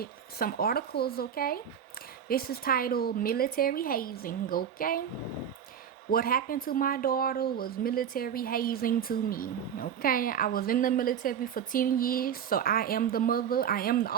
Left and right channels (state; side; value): quieter; left; 8.4 dB